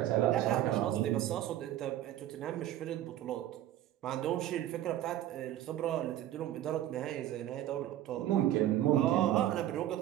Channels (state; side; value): quieter; left; 12.8 dB